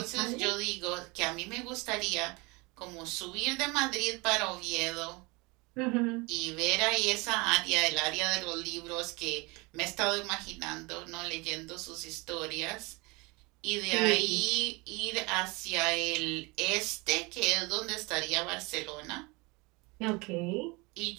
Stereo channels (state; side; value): quieter; left; 26.3 dB